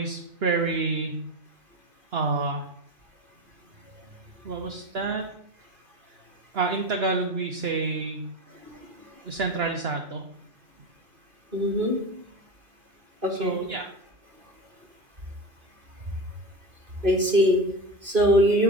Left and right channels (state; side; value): late; left; 2.5 ms